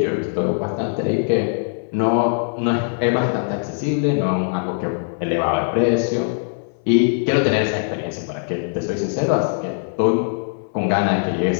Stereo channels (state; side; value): silent; right; 62 dB below the other